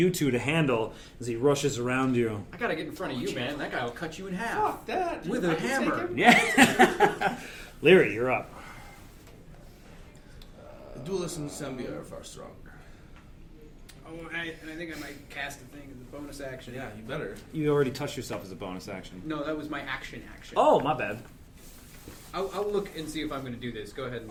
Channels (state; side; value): identical; both; correlation 1.00